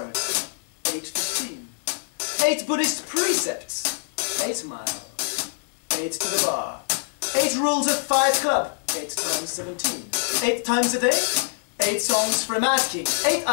8:15, 8 Buddhist precepts, 8 mile, 8 to the bar, 8 rules of Fight Club, 8 times 17, 8 times a day, 8 songs for a mad king, 8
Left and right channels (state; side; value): silent; right; 60 dB below the other